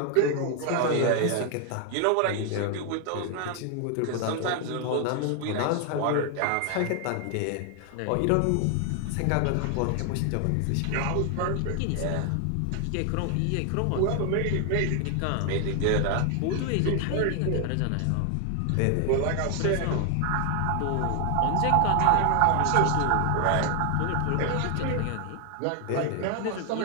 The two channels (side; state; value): both; different; correlation 0.00